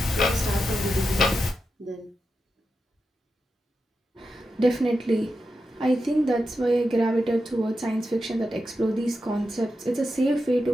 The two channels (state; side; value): normal; both; correlation 0.89